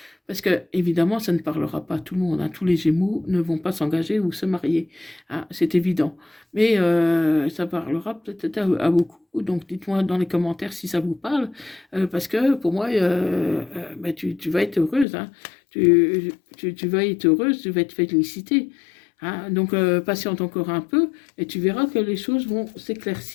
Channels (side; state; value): right; drops out; at 15.1 s